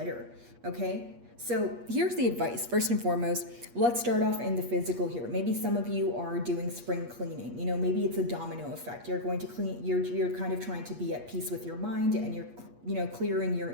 okay? So here's the advice. First and foremost, let's start off in the physical here. Maybe some of you are doing spring cleaning. Maybe it's a domino effect. You're going to clean, you're kind of trying to be at peace with your mind, and you're clearing your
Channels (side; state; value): left; late; 8.4 ms